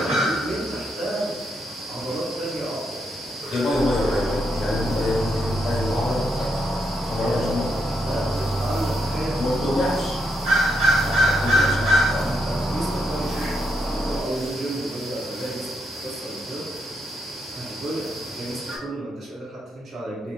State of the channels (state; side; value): normal; both; correlation 0.79